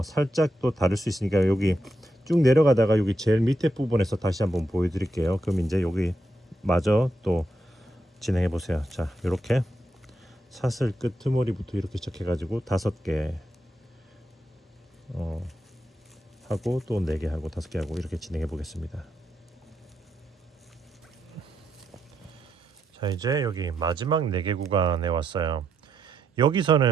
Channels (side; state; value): both; normal; correlation 0.82